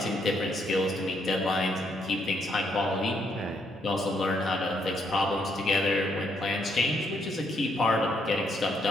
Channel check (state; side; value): normal; both; correlation 0.74